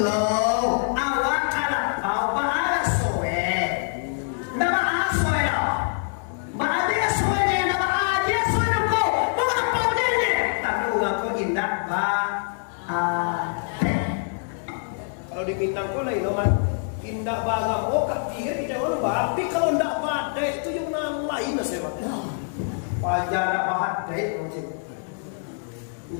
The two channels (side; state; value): right; silent; 62 dB below the other